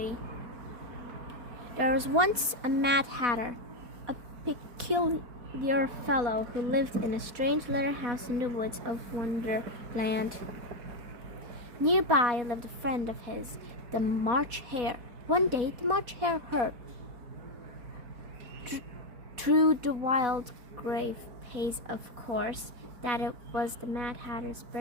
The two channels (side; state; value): left; late; 4.1 ms